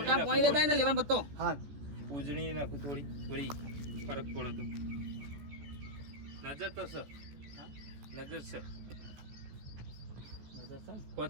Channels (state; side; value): late; left; 14 ms